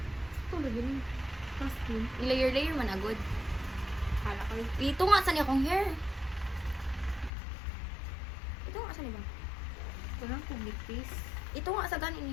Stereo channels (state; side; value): drops out; right; at 7.3 s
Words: Ito lagi ni. Costume. Layer man agad. Kala kayo. Ito nga sa niya akong hair. Ito nga sa niya ba? Ito lang pumitis. Ito nga sa